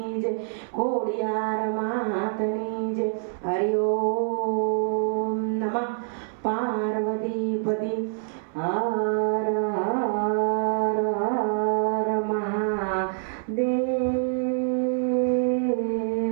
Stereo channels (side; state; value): left; silent; 61 dB below the other